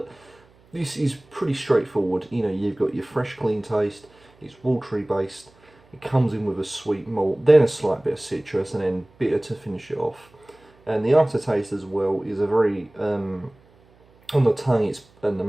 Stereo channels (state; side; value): noise; right; hum, 30 dB below the sound